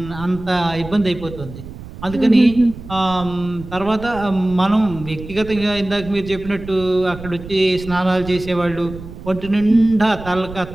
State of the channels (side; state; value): right; noise; rumble, 14 dB below the sound